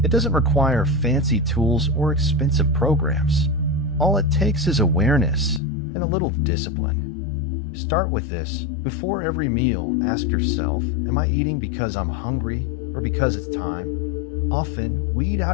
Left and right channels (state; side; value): drops out; right; at 5.6 s